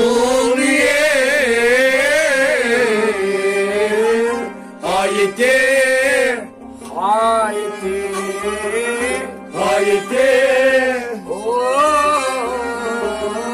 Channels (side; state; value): both; identical; correlation 1.00